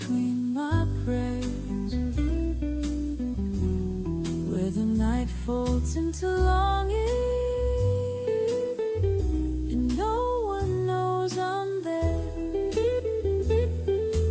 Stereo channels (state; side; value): identical; both; correlation 1.00